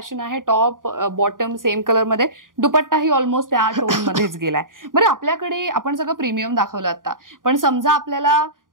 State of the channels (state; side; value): late; left; 0.90 ms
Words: आहे, टॉप बॉटम सेम कलर मध्ये, दुपट्टाही ऑलमोस्ट त्या टोन मध्येच गेलाय. बरं, आपल्याकडे आपण सगळं प्रीमियम दाखवलं आता, पण समजा आपल्याला